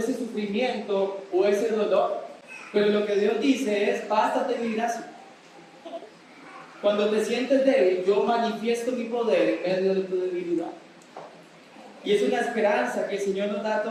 ese sufrimiento o ese dolor, pero lo que Dios dice es, bástate mi gracia. Cuando te sientes débil, yo manifiesto mi poder en medio de tu debilidad. Y es una esperanza que el Señor nos da a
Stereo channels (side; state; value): both; identical; correlation 1.00